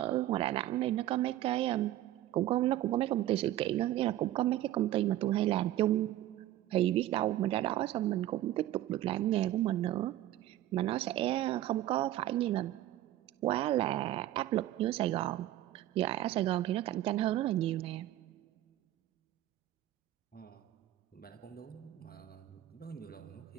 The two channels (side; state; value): left; quieter; 13.9 dB